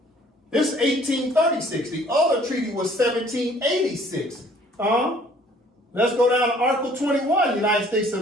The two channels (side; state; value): both; normal; correlation 0.56